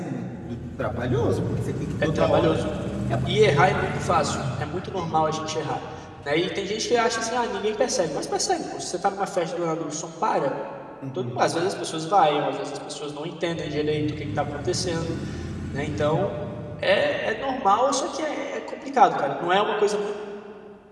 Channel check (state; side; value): identical; both; correlation 1.00